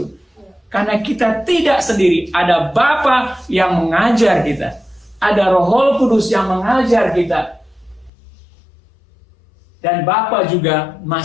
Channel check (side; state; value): right; drops out; at 8.1 s